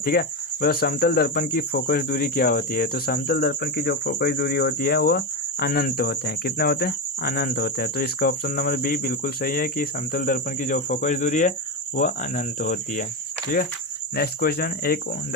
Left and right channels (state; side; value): normal; both; correlation 0.14